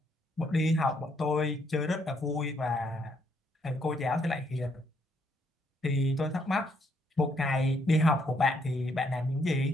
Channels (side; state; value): both; normal; correlation 0.72